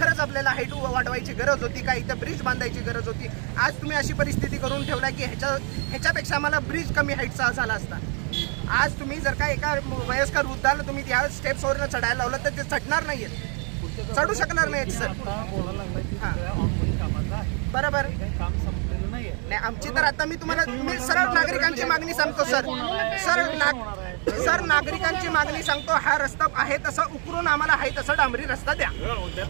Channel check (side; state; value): left; quieter; 38.3 dB